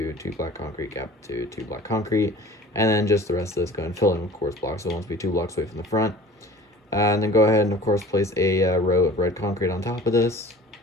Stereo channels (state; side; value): normal; both; correlation 0.44